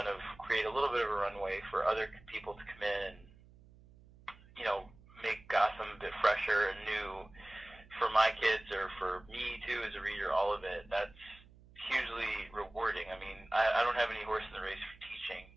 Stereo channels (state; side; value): noise; right; hum, 24 dB below the sound